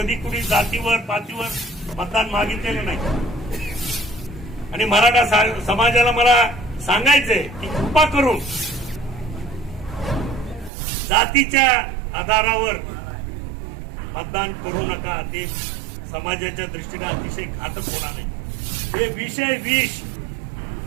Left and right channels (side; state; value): left; drops out; at 10.7 s